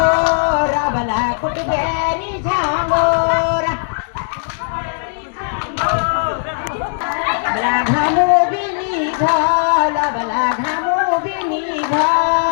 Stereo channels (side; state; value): right; silent; digital silence